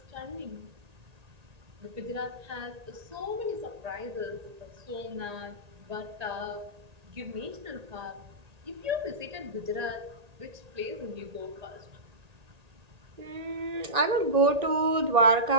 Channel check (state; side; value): late; left; 1.8 ms